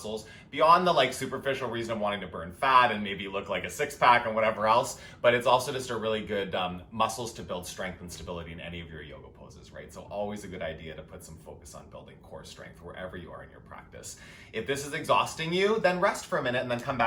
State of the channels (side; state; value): both; identical; correlation 1.00